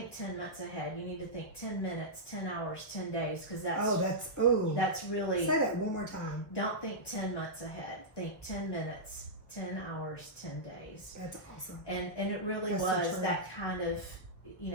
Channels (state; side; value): late; right; 1.2 ms